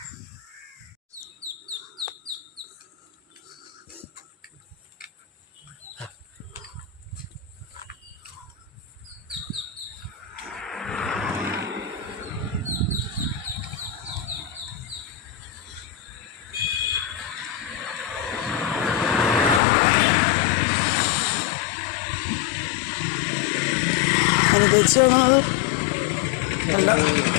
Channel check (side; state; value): right; drops out; at 19.6 s